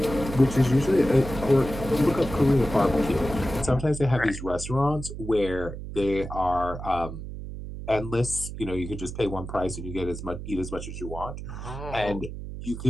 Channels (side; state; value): right; noise; hum, 9 dB below the sound